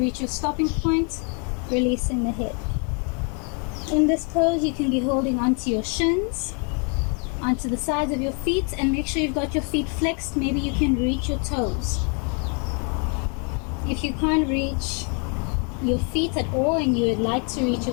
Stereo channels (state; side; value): quieter; right; 38.0 dB